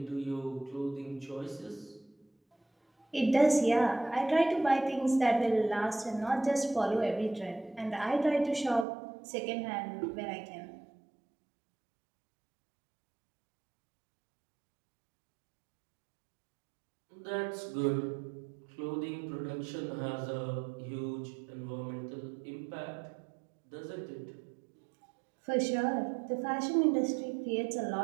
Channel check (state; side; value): drops out; left; at 8.8 s